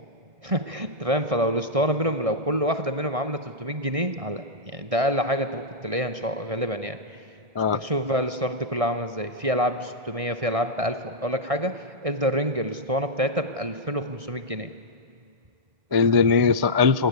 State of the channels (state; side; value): late; left; 1.6 ms